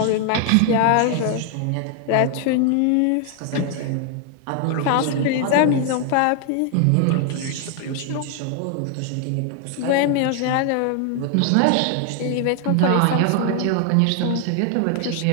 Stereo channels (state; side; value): different; both; correlation 0.00